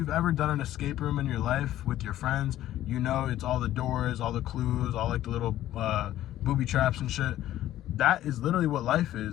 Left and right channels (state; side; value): quieter; right; 13.4 dB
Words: ever done an escape room in your life with your friends, you know it's all the doors, all the clues, all like the little booby traps and shit. That is literally what life